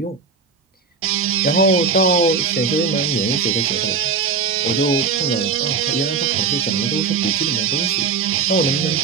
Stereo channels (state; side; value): quieter; left; 5.2 dB